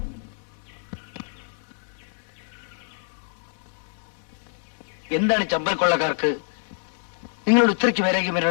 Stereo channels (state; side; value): silent; right; 61 dB below the other